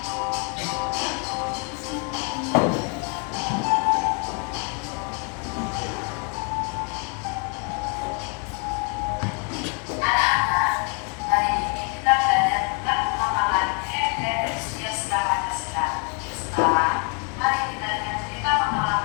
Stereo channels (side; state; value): right; quieter; 37.3 dB